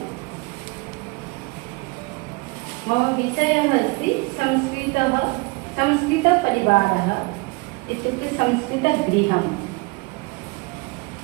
मम विषयः अस्ति संस्कृतपरिवारः इत्युक्ते संस्कृतगृहम्।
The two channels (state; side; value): quieter; left; 26.3 dB